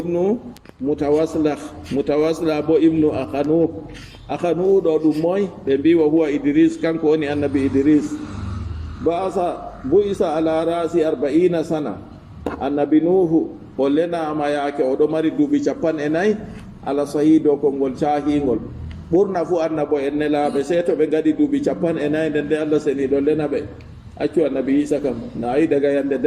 mutawasila bo ibnu akhanu do dum moy be biwa huwa Idris kanko woni annabi Idris bu isa ala rasi 40 sana annabi nuhu o lena ma yake o do mari dubi 40 ala sahido ko ngol cahingol burna fu annabo en nelabe seto be gadi dubi 40 nde Allah seni do lena be accu annabi isa kam na ay daga yande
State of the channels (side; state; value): both; identical; correlation 1.00